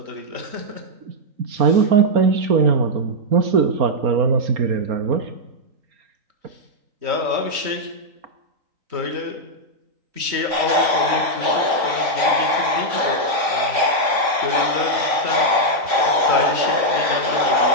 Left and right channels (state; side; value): late; left; 3.5 ms